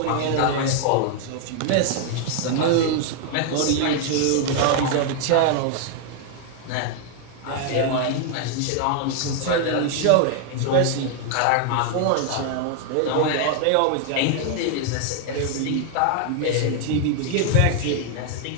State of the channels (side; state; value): both; different; correlation 0.00